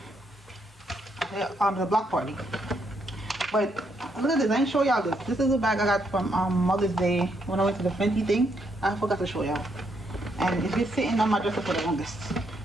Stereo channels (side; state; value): both; normal; correlation 0.75